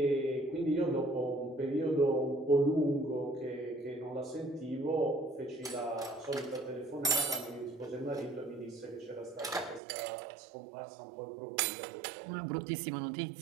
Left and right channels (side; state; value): left; drops out; at 9.8 s